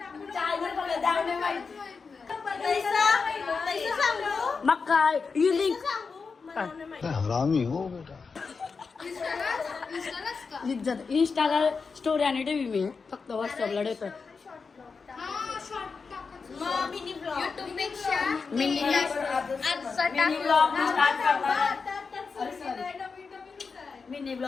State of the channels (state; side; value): quieter; right; 4.9 dB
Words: बघा द्यावणे माहिती मग काय ही लिंक हरामी हो बेटा इंस्टाला स्टोरी आणि टीव्ही मी फक्त व्हॉट्सअपला देतो मिनी